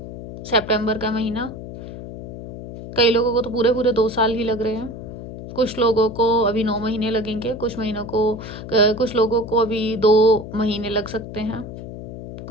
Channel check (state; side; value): noise; left; hum, 10 dB below the sound